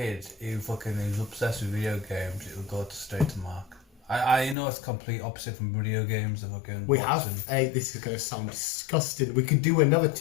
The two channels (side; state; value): right; drops out; at 4.5 s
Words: who is obsessed with video games, it'll go straight to Mark. I know it's complete opposite from video games and fucking We have. boxing. Hey, this is going to sound disgusting. We could do another